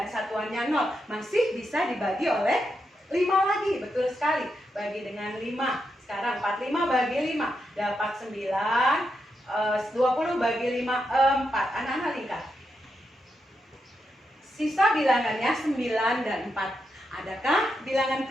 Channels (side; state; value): both; normal; correlation 0.84